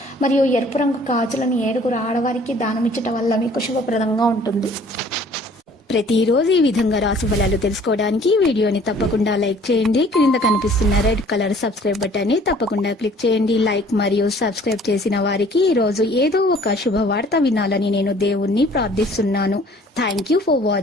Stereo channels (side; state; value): both; normal; correlation 0.54